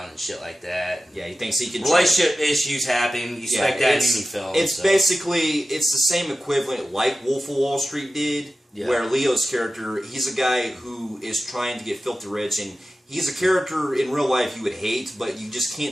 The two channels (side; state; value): both; normal; correlation 0.94